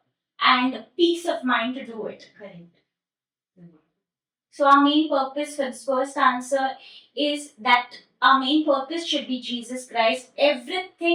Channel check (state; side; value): identical; both; correlation 1.00